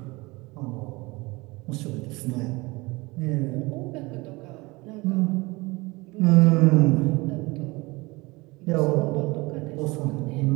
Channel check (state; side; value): quieter; left; 23.6 dB